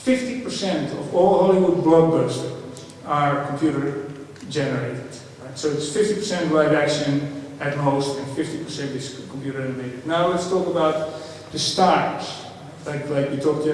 50% of all Hollywood blockbusters are computer generated. Right? So it's 50% live action at most, and 50% is computer animated. Now let's talk about the stars. Like we talked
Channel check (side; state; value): both; identical; correlation 1.00